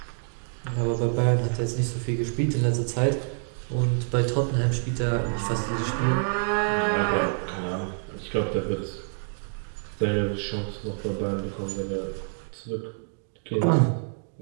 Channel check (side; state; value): left; silent; 60 dB below the other